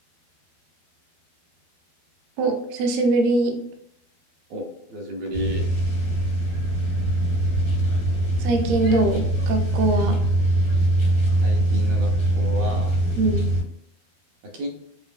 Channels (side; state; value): left; late; 13 ms